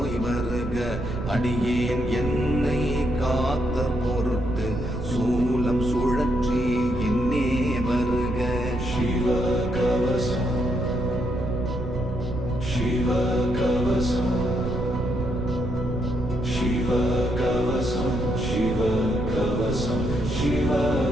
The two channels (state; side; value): noise; right; rumble, 5 dB below the sound